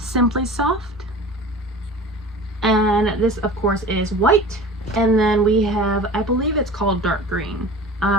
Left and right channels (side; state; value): both; normal; correlation 0.39